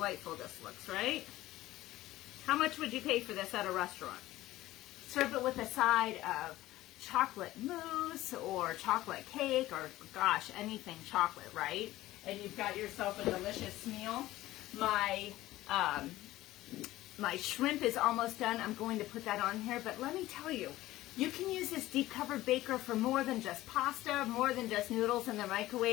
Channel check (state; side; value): quieter; right; 16.3 dB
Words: this looks, right? How much would you pay for this at a restaurant? Serve it with a side of chocolate mousse or chocolate cake or, gosh, anything chocolate, right? And you've got yourself a delicious meal. My shrimp is almost done. I'm going to put that on here, but let me tell you, you can use this deep covered baker for more than just pasta, more than just noodles in the